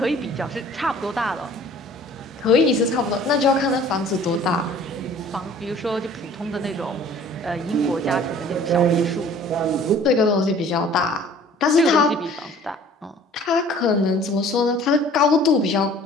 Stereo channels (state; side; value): normal; both; correlation 0.50